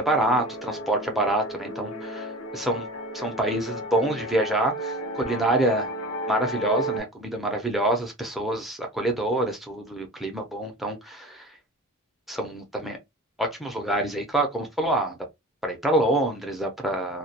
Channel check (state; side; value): normal; both; correlation 0.36